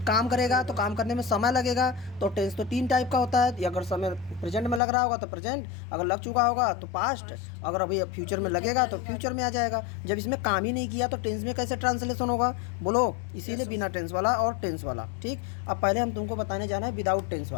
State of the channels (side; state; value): right; drops out; at 4.8 s